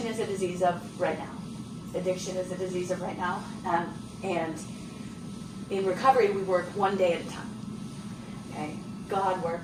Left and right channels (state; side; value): identical; both; correlation 1.00